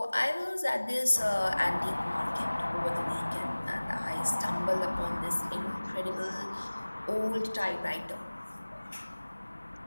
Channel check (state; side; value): inverted; both; correlation -1.00